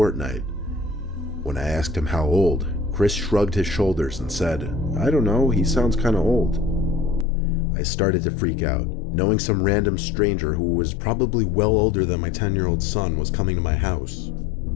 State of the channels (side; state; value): right; drops out; at 7.2 s